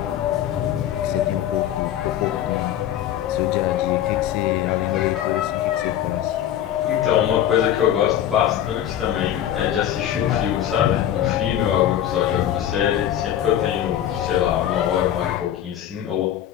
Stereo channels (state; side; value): quieter; right; 11.1 dB